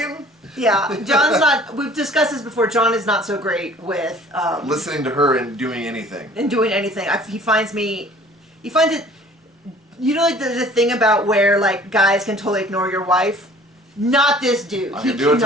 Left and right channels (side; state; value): both; normal; correlation 0.50